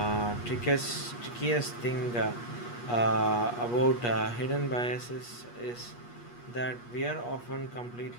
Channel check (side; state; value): right; late; 8.4 ms